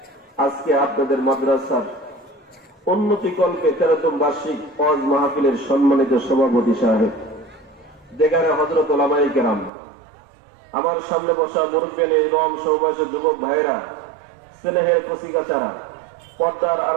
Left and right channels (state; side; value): drops out; left; at 9.7 s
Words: আজকে আপনাদের মাদ্রাসার উন্নতিকল্পে 13তম বার্ষিক ওয়াজ মাহফিলের সম্মানিত সভাপতি সাহেব দেগারে হযরত উলামায়ে কেরাম, আমার সামনে বসা মুরব্বিয়ান ইমাম সহবাসী যুবক ভাইরা, স্নেহের কচিকাচারা, পর্দার